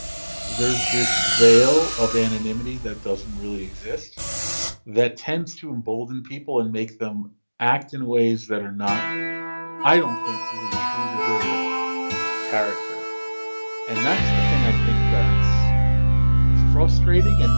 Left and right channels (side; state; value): both; inverted; correlation -1.00